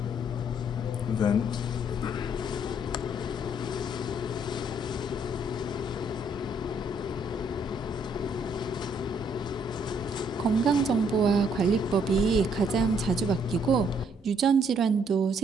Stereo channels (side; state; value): both; normal; correlation 0.68